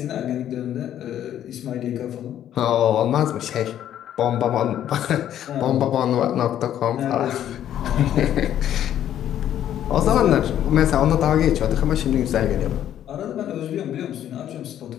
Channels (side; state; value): right; quieter; 11.0 dB